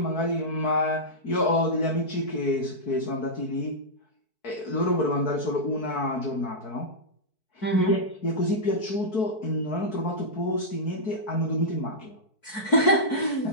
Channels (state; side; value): late; right; 4.6 ms